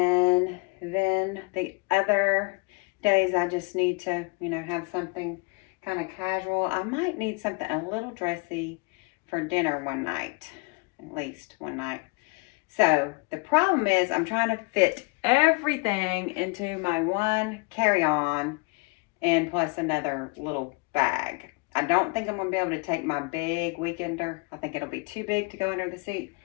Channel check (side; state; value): right; quieter; 29.7 dB